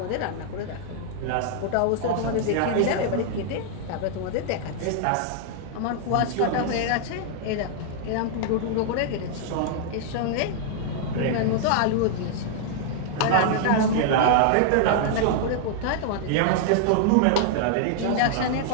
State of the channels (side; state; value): both; different; correlation 0.00